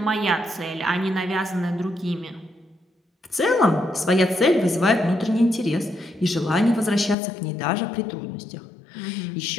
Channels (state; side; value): drops out; right; at 7.2 s